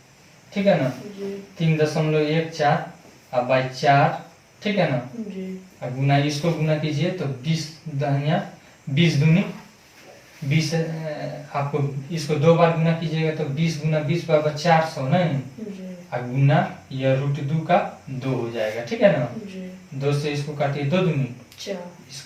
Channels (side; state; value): both; identical; correlation 1.00